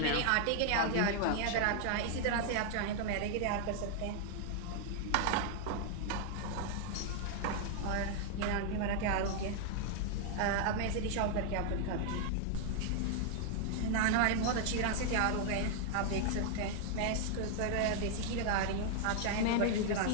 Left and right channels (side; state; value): both; different; correlation 0.00